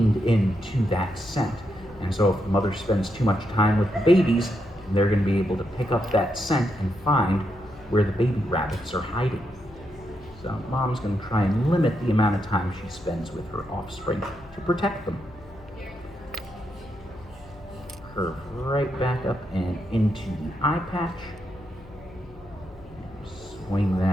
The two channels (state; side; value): noise; left; hum, 21 dB below the sound